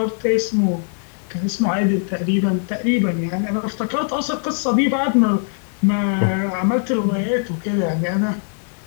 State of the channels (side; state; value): right; silent; 57 dB below the other